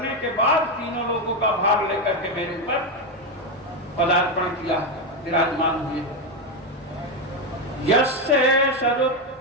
के बाद तीनों लोगों का भार लेकर के मेरे ऊपर पदार्पण किया, विराजमान हुए। यस्य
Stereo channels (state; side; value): normal; both; correlation 0.09